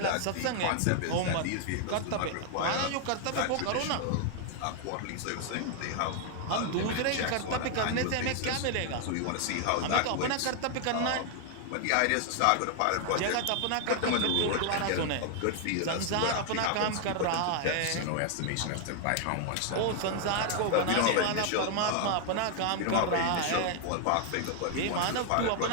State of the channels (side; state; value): both; different; correlation 0.00